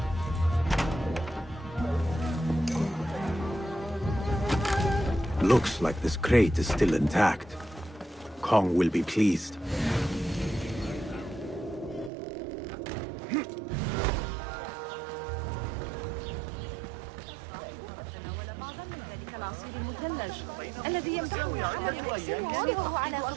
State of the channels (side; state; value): left; drops out; at 12.1 s